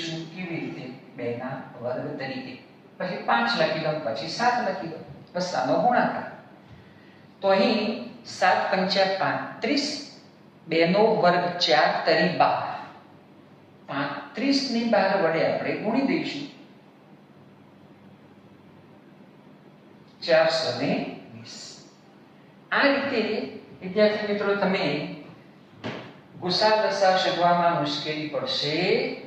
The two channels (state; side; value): identical; both; correlation 1.00